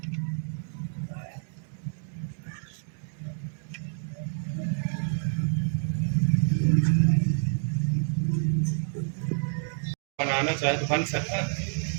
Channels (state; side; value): silent; left; digital silence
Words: बनाना चाहे तो बन सकता है,